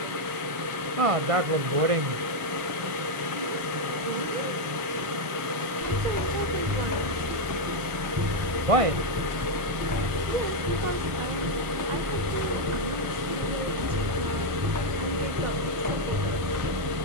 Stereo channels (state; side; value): late; left; 1.4 ms